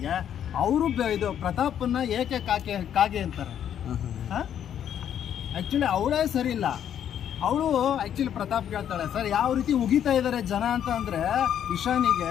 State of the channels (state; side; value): quieter; right; 9.7 dB